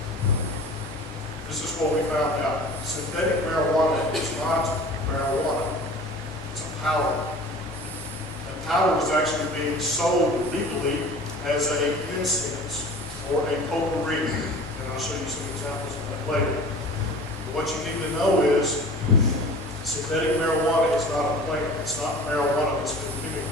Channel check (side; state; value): both; normal; correlation 0.42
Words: this is what we found out. Synthetic marijuana is not marijuana. It's a powder. And powder was actually being sold legally as an incense or a potpourri. And I'll show you some examples of that later. But what you need to know is synthetic marijuana is not a plant. It's not marijuana that's been